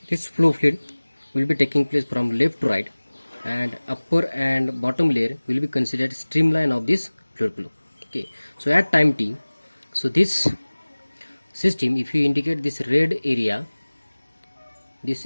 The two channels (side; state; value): both; inverted; correlation -1.00